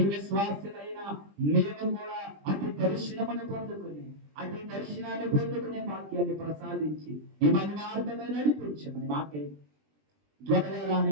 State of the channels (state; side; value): late; left; 20 ms